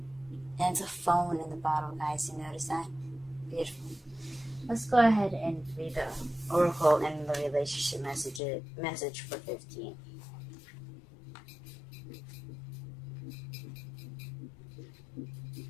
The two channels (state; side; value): drops out; right; at 8.4 s